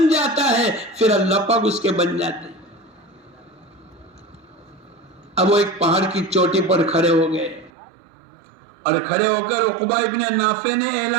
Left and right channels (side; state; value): left; drops out; at 7.7 s